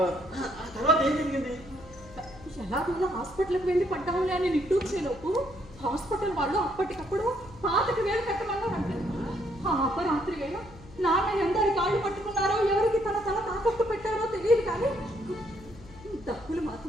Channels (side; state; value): left; noise; hum, 19 dB below the sound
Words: తర్వాత ఏం జరిగింది? ఎలాగోలా హాస్పిటల్కి వెళ్ళి పడ్డాంలే అని నిట్టూర్చేలోపు హాస్పిటల్ వాళ్ళు అప్పటికప్పుడు 5,000 కట్టమన్నారంటే. ఆ అపరాత్రి వేళ నాన్న ఎందరి కాళ్ళు పట్టుకున్నారో, ఎవరికి తన తల తాకట్టు పెట్టారో తెలియదు, కానీ డబ్బులు